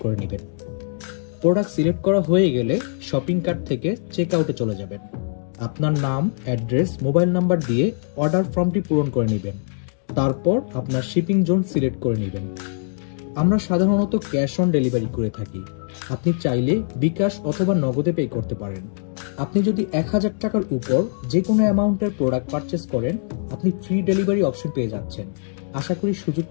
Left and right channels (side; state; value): right; silent; digital silence